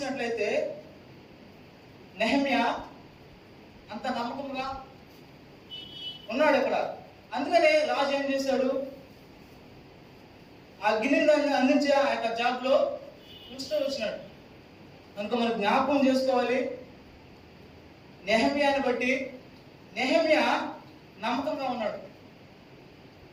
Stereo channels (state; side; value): identical; both; correlation 1.00